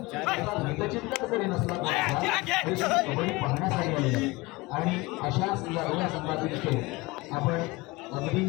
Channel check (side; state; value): right; quieter; 22.5 dB